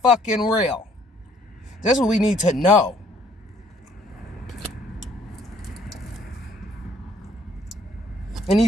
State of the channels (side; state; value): both; normal; correlation 0.63